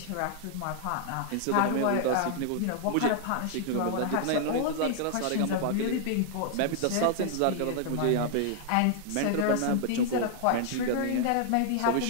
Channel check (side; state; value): both; different; correlation -0.01